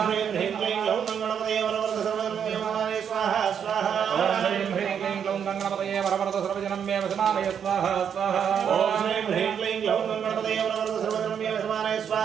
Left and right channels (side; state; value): left; quieter; 7.9 dB